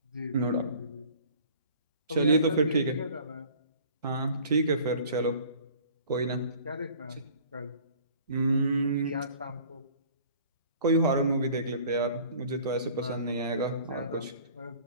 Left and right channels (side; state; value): both; inverted; correlation -0.49